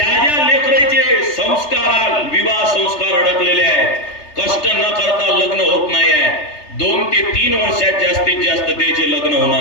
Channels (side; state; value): right; late; 3.3 ms